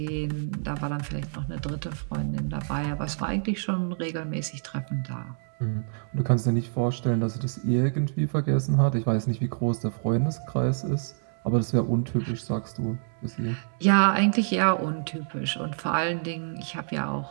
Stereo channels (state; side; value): silent; left; digital silence